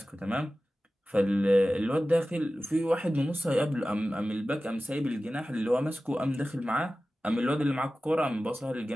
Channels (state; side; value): normal; both; correlation 0.95